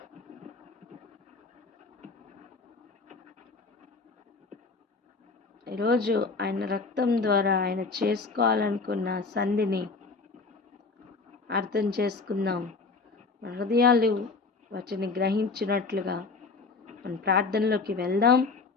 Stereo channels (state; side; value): quieter; right; 4.2 dB